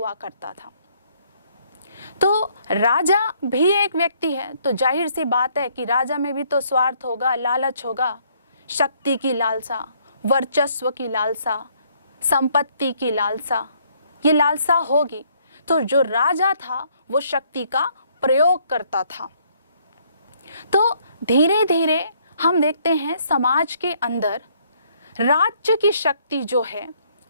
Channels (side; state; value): both; inverted; correlation -0.66